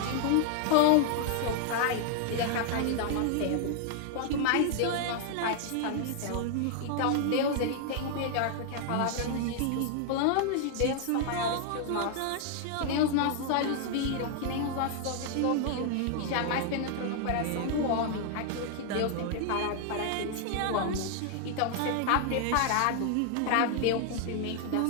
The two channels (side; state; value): both; different; correlation 0.00